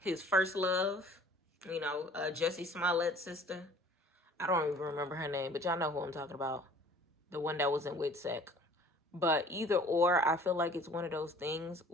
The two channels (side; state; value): both; normal; correlation 0.50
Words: first love, you know, Jussie Smollett's sister. I don't even remember her name, but y'all know who I'm talking about. The one that was in WITSEC. But either or, I feel like it's one of those things